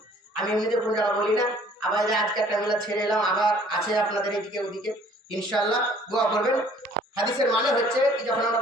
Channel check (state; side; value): normal; both; correlation 0.56